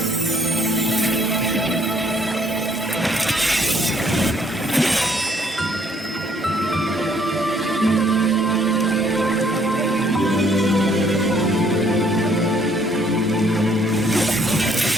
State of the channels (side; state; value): both; normal; correlation 0.64